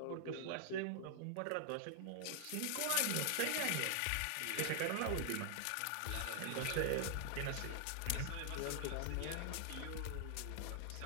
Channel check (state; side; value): different; both; correlation 0.00